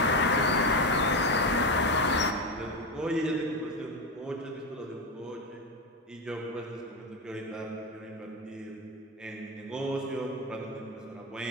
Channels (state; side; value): normal; both; correlation 0.14